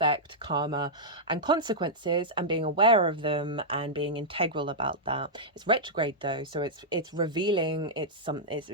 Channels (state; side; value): normal; both; correlation -0.09